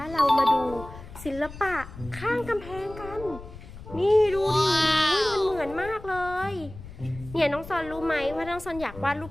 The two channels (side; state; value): left; noise; rumble, 15 dB below the sound